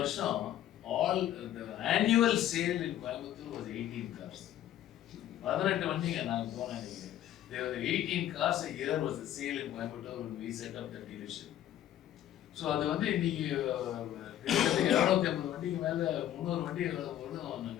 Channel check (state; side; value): quieter; right; 12.1 dB